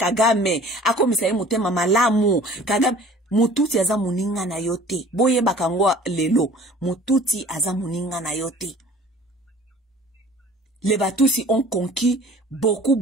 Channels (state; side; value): normal; both; correlation 0.48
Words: akomisa mutema malamu, Kagame mututi aza muninga na yote. Boye bakangwa lelo, mututi aza muninga na yote. Les Batusi ont conquis